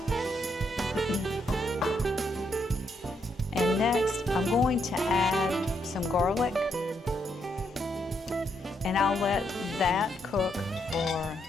And next, I'm going to add some garlic. And I'll let that cook for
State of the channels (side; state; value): both; normal; correlation 0.77